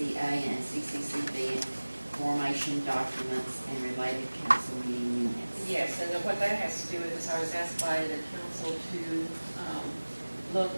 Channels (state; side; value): inverted; both; correlation -1.00